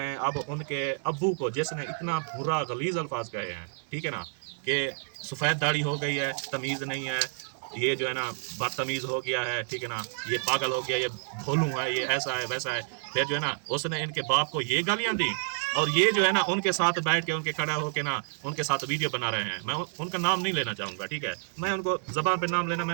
हैं, अब उनके अब्बू को जिसने इतना बुरा गलीज अल्फाज कहे हैं, ठीक है ना, कि सफ़ेद दाढ़ी हो गई है, तमीज़ नहीं है, ये जो है ना बदतमीज़ हो गया है, ठीक है ना, ये पागल हो गया, ये भोलू है, ये ऐसा है वैसा है, फिर जो है ना उसने इनके बाप को ये गालियाँ दी, और ये जो है ना उनके साथ बैठ के उनके खड़ा होके ना उनके साथ वीडियो बना रहे हैं। मैं उनका नाम नहीं लेना चाहूँगा, ठीक है, मैं उनको ज़बान पे नाम लेना,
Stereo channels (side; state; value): left; silent; digital silence